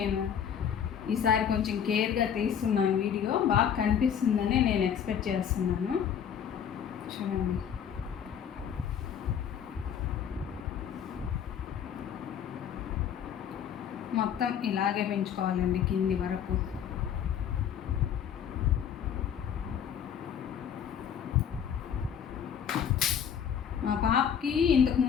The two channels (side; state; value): right; quieter; 8.4 dB